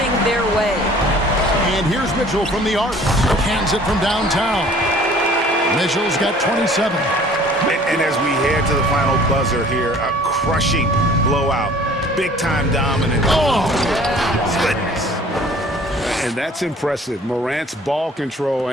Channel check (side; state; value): both; normal; correlation 0.51